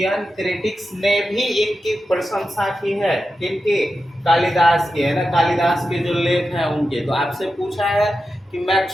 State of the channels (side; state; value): both; normal; correlation 0.91